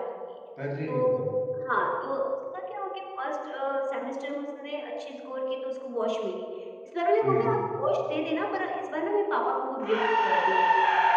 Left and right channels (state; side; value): identical; both; correlation 1.00